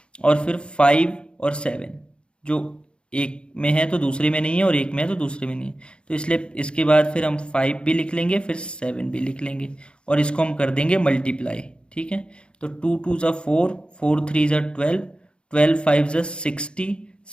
और फिर 5 और 7 जो एक में है तो दूसरे में नहीं है और एक में है तो दूसरे में नहीं है, तो इसलिए इसके बाद फिर हम 5 भी लिख लेंगे, फिर 7 भी लिख लेंगे और इसको हम कर देंगे मल्टीप्लाई, ठीक है। तो 2 2 ज़ा 4, 4 3 ज़ा 12, 12 5 ज़ा 60,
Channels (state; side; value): late; right; 0.055 ms